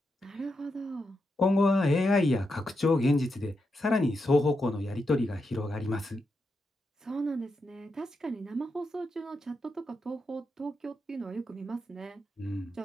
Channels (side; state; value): both; normal; correlation 0.85